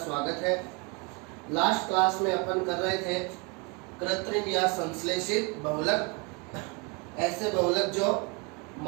है। लास्ट क्लास में अपन कर रहे थे कृत्रिम या संश्लेषित बहुलक, ऐसे बहुलक जो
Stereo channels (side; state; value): left; quieter; 29.0 dB